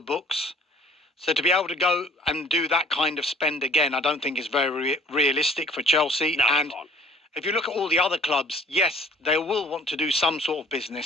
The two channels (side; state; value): both; normal; correlation 0.54